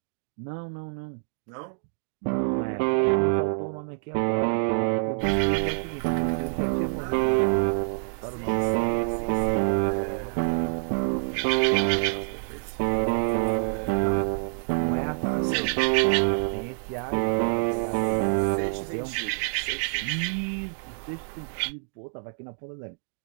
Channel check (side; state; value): left; silent; digital silence